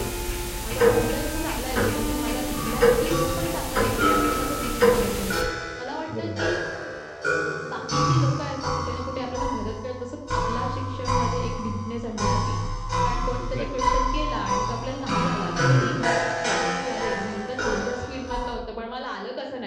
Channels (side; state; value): both; identical; correlation 1.00